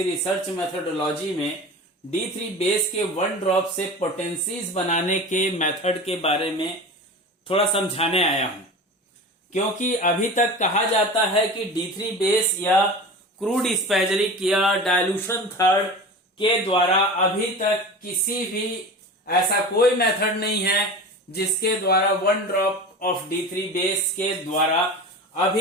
research methodology में D3 बेस के 1 ड्रॉप से पोटेंसीज बनाने के मेथड के बारे में थोड़ा समझाने आया हूं, क्योंकि अभी तक कहा जाता है कि D3 बेस या क्रूड स्पैजरिक या डायल्यूशन थर्ड के द्वारा अभी तक किसी भी ऐसा कोई मेथड नहीं है जिसके द्वारा 1 ड्रॉप ऑफ D3 बेस के द्वारा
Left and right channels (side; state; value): both; normal; correlation 0.32